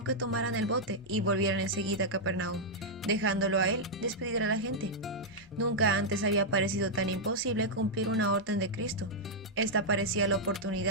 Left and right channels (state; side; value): normal; both; correlation -0.05